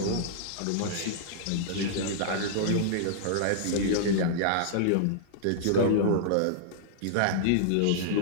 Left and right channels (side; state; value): both; different; correlation -0.02